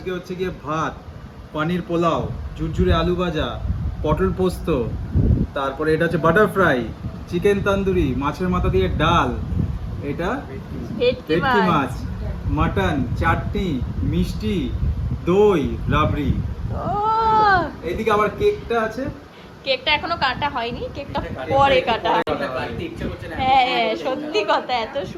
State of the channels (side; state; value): both; identical; correlation 1.00